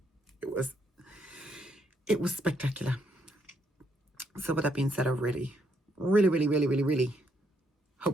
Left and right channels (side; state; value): both; normal; correlation 0.74